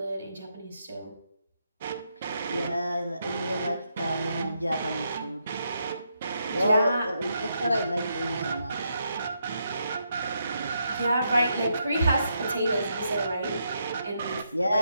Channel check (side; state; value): both; inverted; correlation -0.80